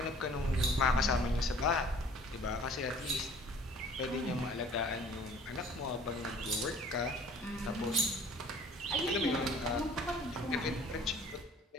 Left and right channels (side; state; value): both; normal; correlation 0.51